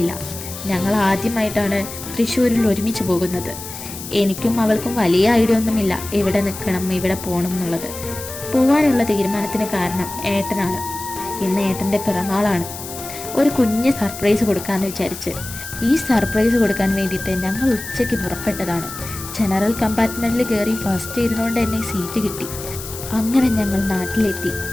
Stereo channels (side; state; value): left; noise; hiss, 11 dB below the sound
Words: ഞങ്ങൾ ആദ്യമായിട്ടാണ് തൃശ്ശൂരിൽ ഒരുമിച്ച് പോകുന്നത്. എനിക്കും അവൾക്കും വലിയ ഐഡിയ ഒന്നുമില്ല എവിടെ നിൽക്കണം എവിടെ പോകണം എന്നുള്ളത്. പോവാനുള്ള തീരുമാനത്തിന് കാരണം ഏട്ടനാണ്. ഇന്ന് ഏട്ടൻ്റെ പിറന്നാളാണ്. ഒരു കുഞ്ഞ് സർപ്രൈസ് കൊടുക്കാമെന്ന് വിചാരിച്ച് ഈ സർപ്രൈസ് കൊടുക്കാൻ വേണ്ടിയിട്ട് ഞങ്ങൾ ഉച്ചയ്ക്ക് പുറപ്പെട്ടതാണ്. ജനറൽ കമ്പാർട്ട്മെൻറ്റിൽ കയറി ഫസ്റ്റ് ഇരുന്നുകൊണ്ട് തന്നെ സീറ്റ് കിട്ടി. അങ്ങനെ ഞങ്ങൾ